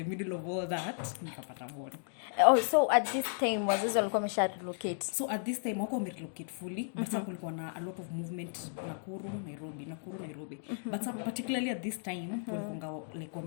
middle of all that nikapata born. Oh, so at this time wazazi walikuwa wamesha relocate? So at this time wako relocate fully, but kulikuwa na a lot of movement Nakuru Nairobi. But particularly at this time walikuwa like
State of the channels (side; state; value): right; silent; digital silence